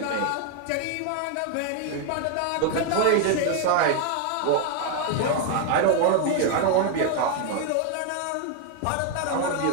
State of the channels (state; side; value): different; both; correlation 0.00